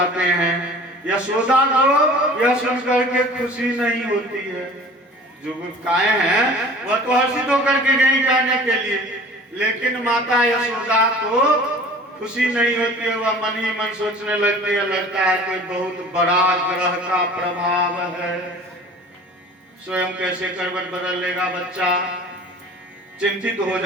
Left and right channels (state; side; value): normal; both; correlation 0.44